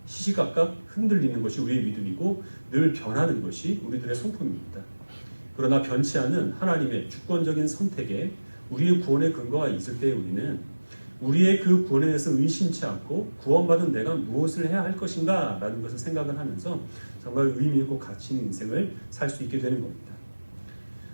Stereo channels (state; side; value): inverted; both; correlation -1.00